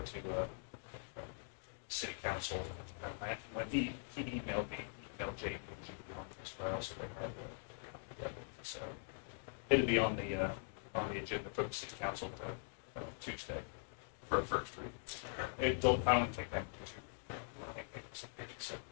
city council. When he emailed me, he emailed Jake and Julie on this file, so they had the copy of it. So it'll be on the agenda for the city council to Tuesday for a first reading. I don't think that would be too. I think it's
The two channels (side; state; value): right; silent; digital silence